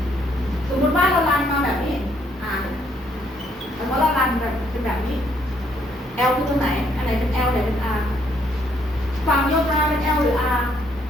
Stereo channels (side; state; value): both; normal; correlation 0.69